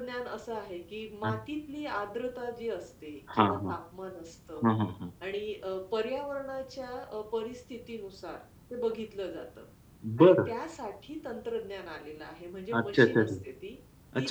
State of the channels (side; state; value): both; identical; correlation 1.00